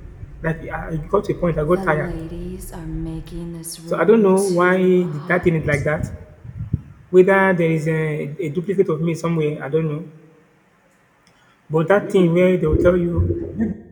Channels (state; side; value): identical; both; correlation 1.00